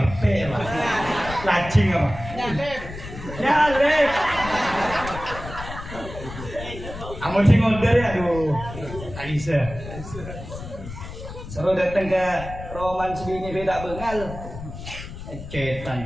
lah. Lacing apa? Nyalek. Amun sing order ya, aduh. Alisa. Seru datang ke Roman sebini beda bengal. Cetan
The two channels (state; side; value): noise; left; rumble, 11 dB below the sound